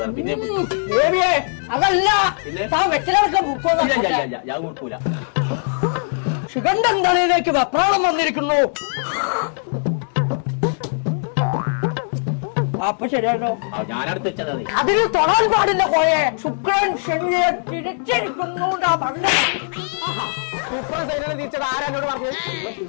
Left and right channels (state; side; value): silent; right; digital silence